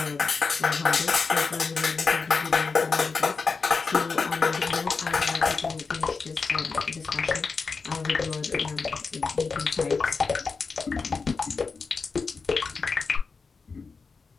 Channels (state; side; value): quieter; right; 4.7 dB